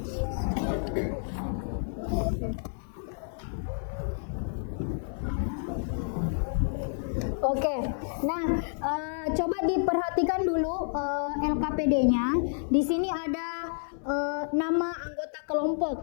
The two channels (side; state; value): right; silent; 58 dB below the other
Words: Oke, nah coba diperhatikan dulu LKPD-nya. Di sini ada nama anggota kelompok.